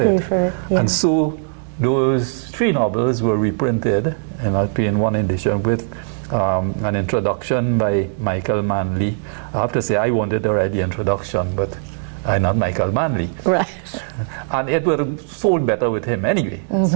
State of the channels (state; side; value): silent; left; digital silence